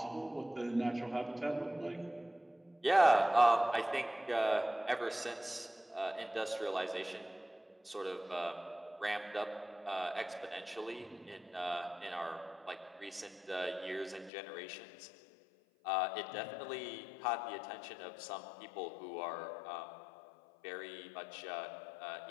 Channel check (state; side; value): drops out; right; at 14.3 s